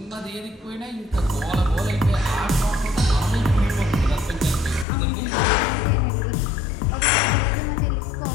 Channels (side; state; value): right; drops out; at 4.9 s